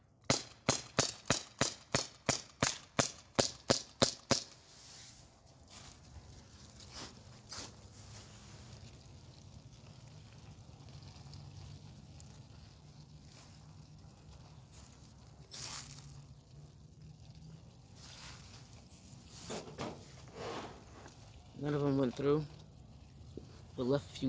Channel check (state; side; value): identical; both; correlation 1.00